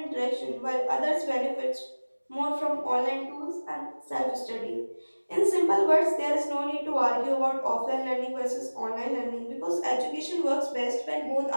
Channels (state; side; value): inverted; both; correlation -1.00